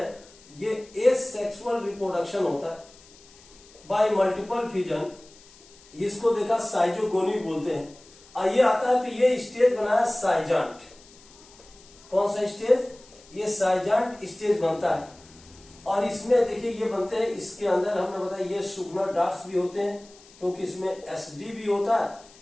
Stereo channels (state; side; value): noise; left; hiss, 24 dB below the sound